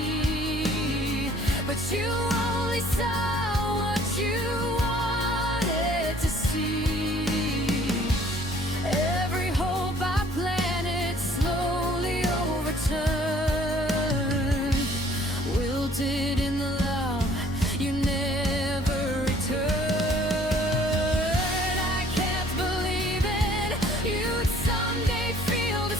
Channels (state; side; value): normal; both; correlation 0.57